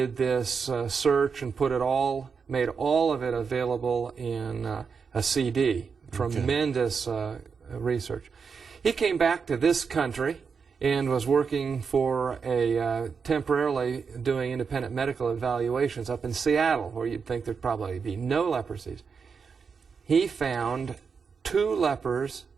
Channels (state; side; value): quieter; left; 5.7 dB